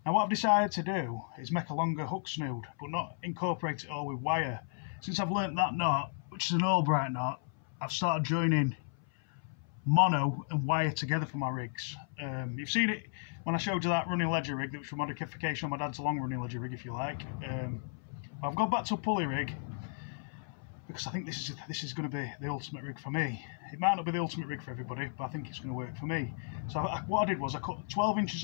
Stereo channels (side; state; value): right; silent; 55 dB below the other